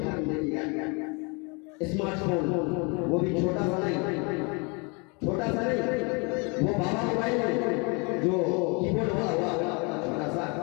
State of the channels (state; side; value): quieter; right; 31.4 dB